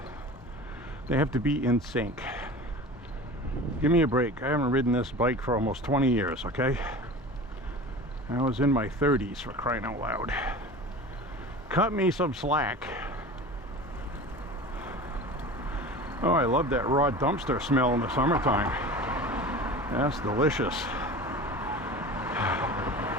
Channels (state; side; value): normal; both; correlation 0.36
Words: They have to be in sync. Give me a break. I haven't ridden this bike for almost 20 years, okay? I was in my 30s, for crying out loud. Cut me some slack. Oh, I love that raw dumpster smell in the summertime. That's delicious.